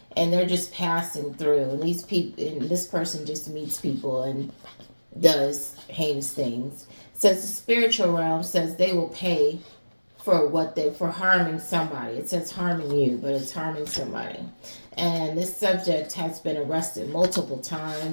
and they're just passing through. And these people, and this person just meets people and does heinous things. It says the spiritual realm says they will pay for harming somebody. It says harming you, but it's harming somebody. And this subject has been arrested multiple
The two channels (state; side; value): inverted; both; correlation -1.00